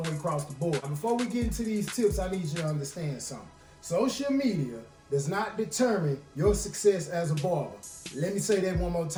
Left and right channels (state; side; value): identical; both; correlation 1.00